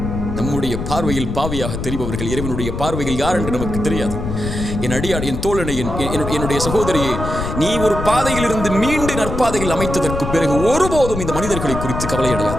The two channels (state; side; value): noise; left; rumble, 5 dB below the sound